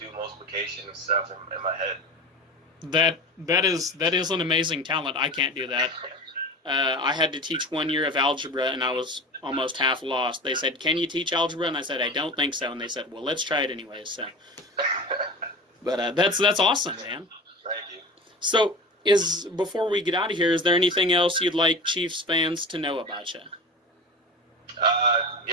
multiplication and stuff in my head. That is an amazing talent. I can't do that. I had to teach 1 year of algebra, and I was almost half lost. They said, "Can you teach algebra?" And I said, "I don't think so." And they said, "Well, let's try it anyway." So, but that's awesome, man. Thank you. So, before we get out of here, is there anything else you'd like Chiefs fans to know about you?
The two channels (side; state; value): both; normal; correlation 0.32